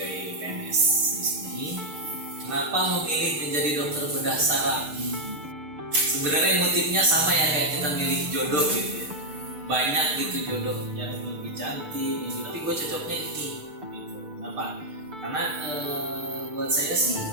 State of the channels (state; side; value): late; left; 6.7 ms